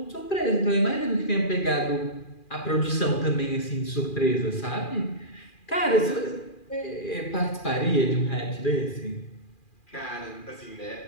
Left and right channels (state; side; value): late; right; 2.4 ms